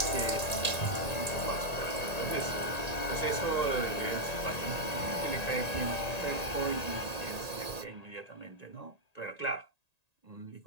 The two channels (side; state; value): right; late; 1.8 ms